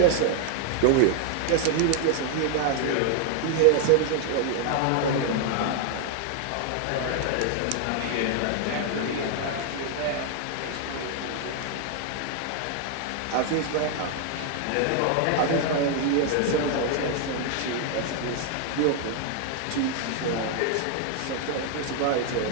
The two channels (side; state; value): both; different; correlation 0.00